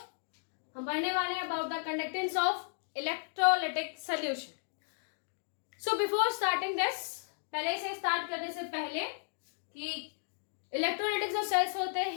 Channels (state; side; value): silent; right; digital silence